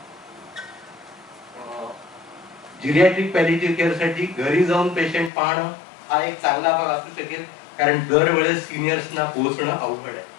जिरियाट्रिक पॅलिएटिव्ह केअर साठी घरी जाऊन पेशंट पाहणं हा एक चांगला भाग असू शकेल, कारण दरवेळेस सिनियर्सना पोहोचणं अवघड आहे.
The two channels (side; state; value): right; drops out; at 5.3 s